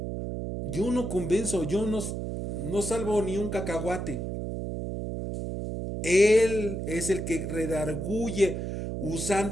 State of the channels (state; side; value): noise; right; hum, 4 dB below the sound